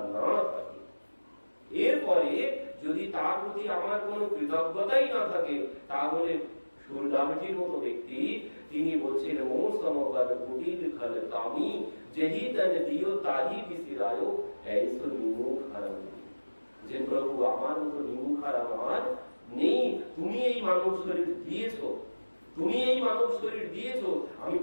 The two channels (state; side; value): inverted; both; correlation -1.00